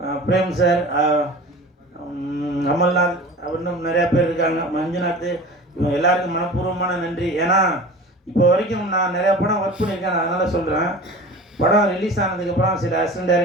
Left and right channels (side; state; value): both; normal; correlation 0.38